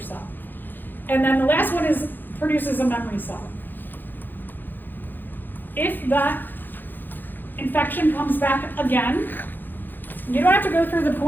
And then the last one is produces a memory cell. If that infection comes back again, you don't have to go through the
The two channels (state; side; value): late; right; 0.091 ms